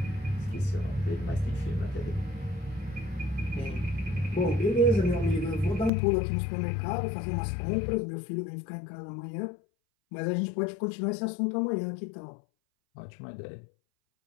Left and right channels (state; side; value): drops out; right; at 5.9 s